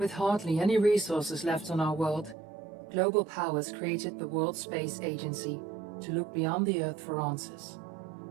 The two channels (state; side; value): drops out; left; at 2.4 s